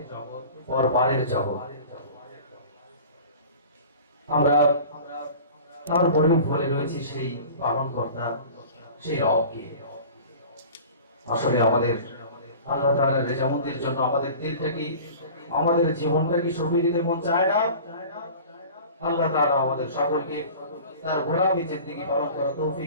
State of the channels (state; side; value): inverted; both; correlation -0.41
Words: পরপারের জগৎ। আমরা তারপরে ভুলে রয়েছি সেই পালনকর্তা, সেই রবকে। আসলে আমাদের আল্লাহ তাআলার রেজামন্দির জন্য আমাদের দিলটাকে, আমাদের জীবনটাকে সঁপে দিতে মন চায় না। আল্লাহ তাআলা আমাদের সকলকে তার গোলামি জিন্দেগি পালন করার